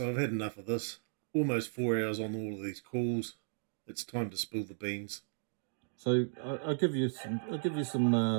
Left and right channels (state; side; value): silent; left; digital silence